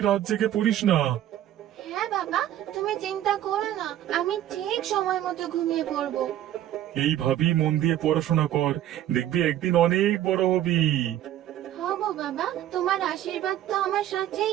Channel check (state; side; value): quieter; left; 12.2 dB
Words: রাত জেগে পড়িস না। হ্যাঁ বাবা, তুমি চিন্তা করো না, আমি ঠিক সময় মতো ঘুমিয়ে পড়বো। এইভাবেই মন দিয়ে পড়াশোনা কর, দেখবি একদিন অনেক বড় হবি। হব বাবা, তোমার আশীর্বাদ তো আমার